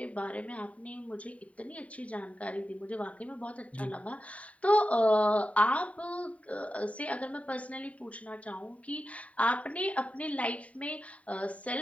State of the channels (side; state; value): right; late; 0.067 ms